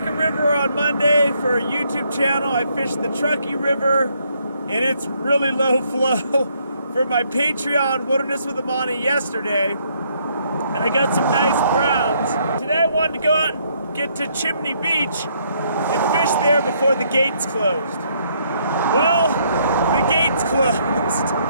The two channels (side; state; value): both; inverted; correlation -0.70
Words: River on Monday for a YouTube channel. I fished the Truckee River, and it's really low flow for my Patreon Wilderness with the Monty yesterday. And I got some nice browns. Today I wanted to go out and get to Chimney Beach and fish there before the gates closed. Well, the gates closed.